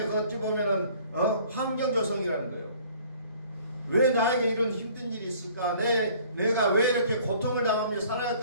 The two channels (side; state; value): both; inverted; correlation -0.54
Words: 어찌 보면은 환경 조성이라는 거예요. 왜 나에게 이런 힘든 일이 있을까? 내가 왜 이렇게 고통을 당하며 살아갈